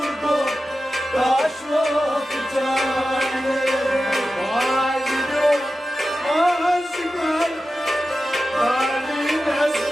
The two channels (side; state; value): both; normal; correlation 0.93